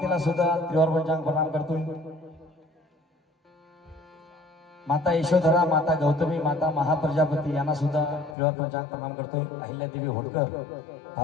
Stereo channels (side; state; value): right; drops out; at 8.3 s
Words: सुद्धा त्रिवार पंचांग प्रणाम करतोय. माता यशोधरा, माता गौतमी, माता महाप्रजापती यांना सुद्धा त्रिवार पंचांग प्रणाम करतोय. अहिल्यादेवी होळकर,